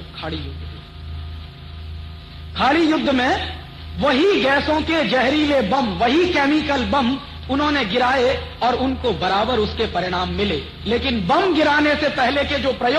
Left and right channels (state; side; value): identical; both; correlation 1.00